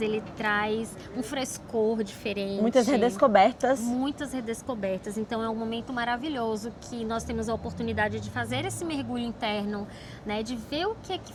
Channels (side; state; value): both; identical; correlation 1.00